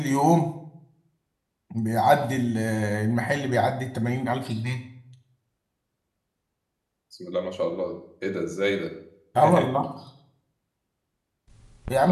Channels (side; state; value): both; identical; correlation 1.00